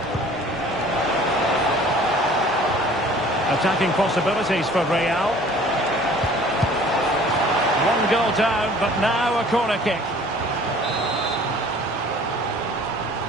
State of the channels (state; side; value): normal; both; correlation 0.50